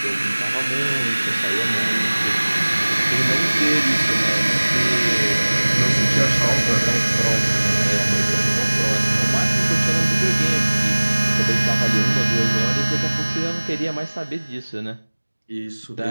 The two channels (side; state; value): both; inverted; correlation -1.00